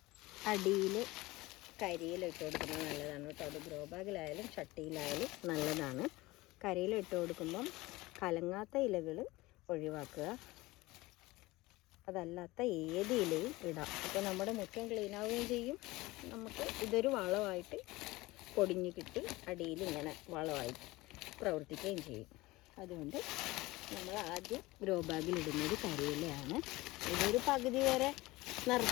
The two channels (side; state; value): right; quieter; 20.3 dB